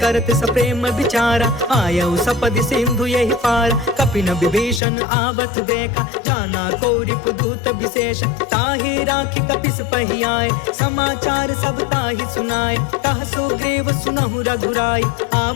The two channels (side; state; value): right; drops out; at 4.8 s